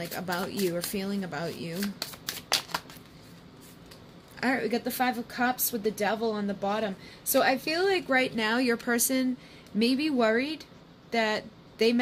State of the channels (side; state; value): both; identical; correlation 1.00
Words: about you or feeling about you. All right, we got the Five of Cups with the Devil on the bottom. So I feel like right now your person may be worried that they